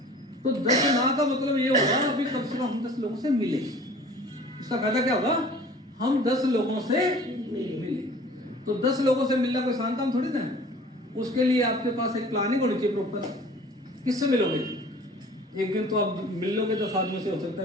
तो 10 ना का मतलब ये होगा अभी कम से कम हम 10 लोगों से मिले। इसका फायदा क्या होगा? हम 10 लोगों से मिले। तो 10 लोगों से मिलना कोई आसान काम थोड़ी ना है। उसके लिए आपके पास एक प्लानिंग होनी चाहिए प्रॉपर। किससे मिलोगे? एक दिन तो आप मिल लोगे 10 आदमी से, हो सकता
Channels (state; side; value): normal; both; correlation 0.46